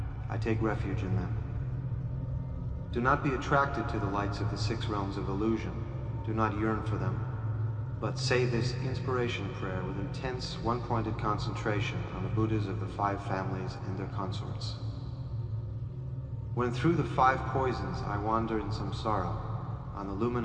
I take refuge in them. Do not be attracted to the lights of the six realms of illusion. Do not yearn for them, but say this inspiration prayer with intense, one-pointed concentration on the Buddhas of the five families and their consorts. When through the five poisons I wander in samsara, on the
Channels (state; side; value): identical; both; correlation 1.00